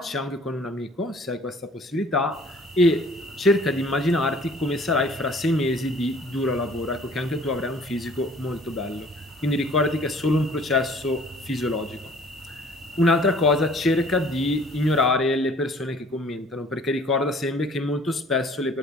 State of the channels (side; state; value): both; normal; correlation 0.53